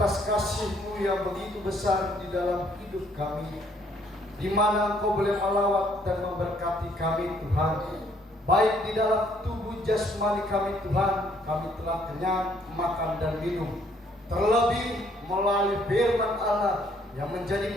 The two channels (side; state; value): both; normal; correlation 0.65